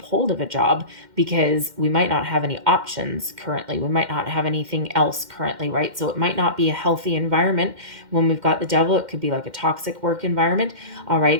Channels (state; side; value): late; left; 2.1 ms